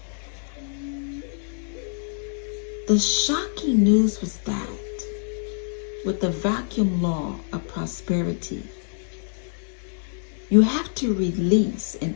The shocking news was that with the vacuum law of prosperity, you have to release in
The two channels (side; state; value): right; silent; 61 dB below the other